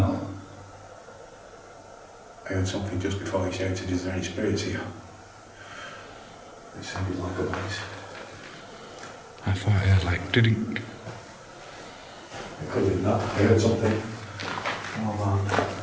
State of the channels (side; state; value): both; identical; correlation 1.00